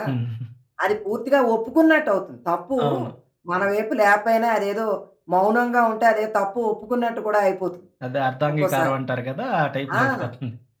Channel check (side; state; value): both; identical; correlation 1.00